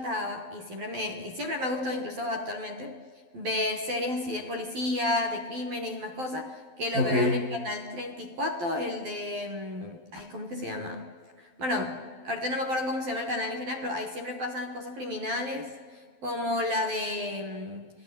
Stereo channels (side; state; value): left; late; 12 ms